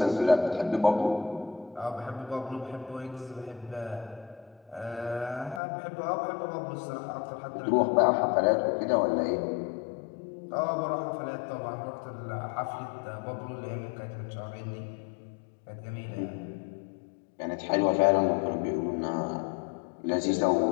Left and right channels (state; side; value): drops out; right; at 5.6 s